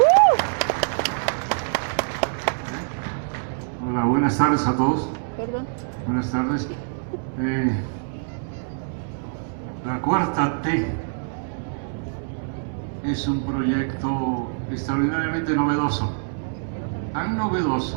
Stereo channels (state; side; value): silent; left; 62 dB below the other